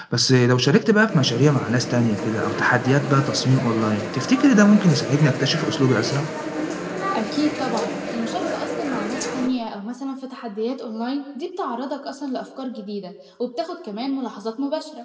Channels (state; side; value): identical; both; correlation 1.00